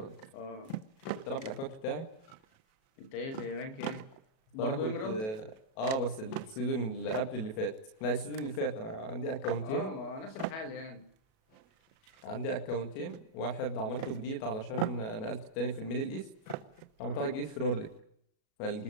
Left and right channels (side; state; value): right; late; 37 ms